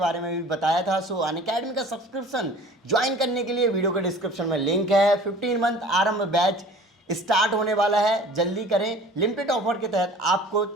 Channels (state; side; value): normal; both; correlation 0.46